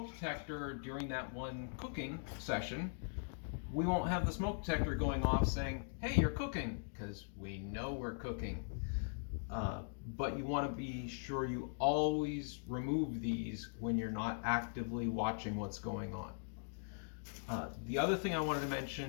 detector during that one cooking session, we won't have the smoke detector going off saying, hey, you're cooking, because we know we're cooking. But you want to be sure you always remove these when you're not actively watching what's going on. The other thing I wanted to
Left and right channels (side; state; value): right; silent; digital silence